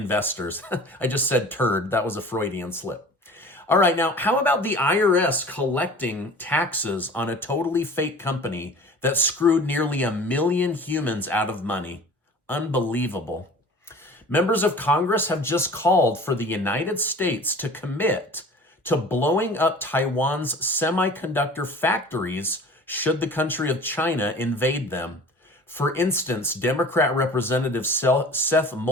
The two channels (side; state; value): both; normal; correlation 0.43